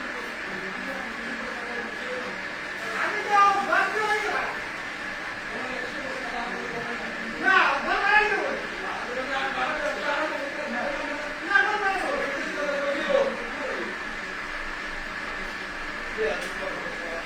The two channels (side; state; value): both; identical; correlation 1.00